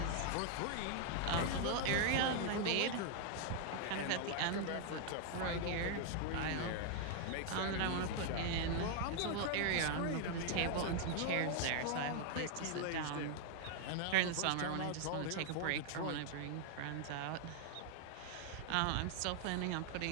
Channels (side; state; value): both; different; correlation 0.00